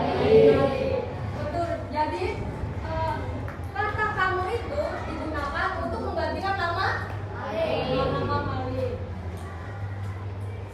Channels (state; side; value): identical; both; correlation 1.00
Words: Betul. Jadi kata kamu itu digunakan untuk menggantikan nama nama Malik.